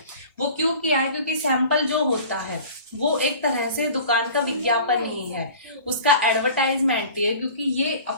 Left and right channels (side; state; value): both; inverted; correlation -0.42